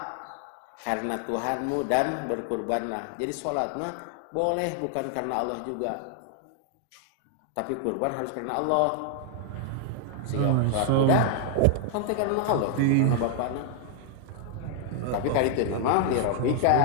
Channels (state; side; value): different; both; correlation 0.00